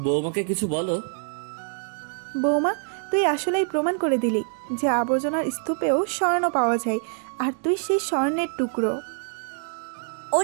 বৌমাকে কিছু বলো। বৌমা, তুই আসলেই প্রমাণ করে দিলি যে আবর্জনার স্তূপেও স্বর্ণ পাওয়া যায়, আর তুই সেই স্বর্ণের টুকরো।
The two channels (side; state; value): left; silent; 57 dB below the other